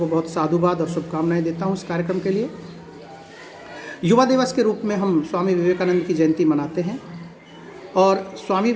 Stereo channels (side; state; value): both; identical; correlation 1.00